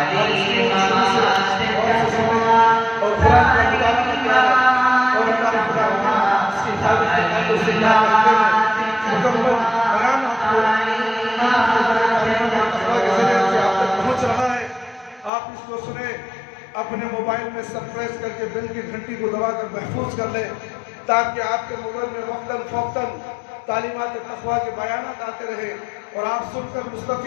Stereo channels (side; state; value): right; drops out; at 15.3 s